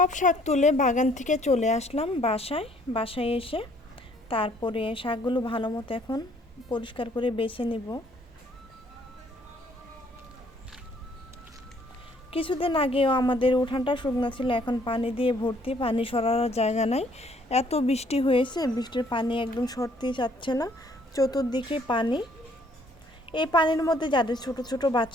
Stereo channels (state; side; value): normal; both; correlation 0.63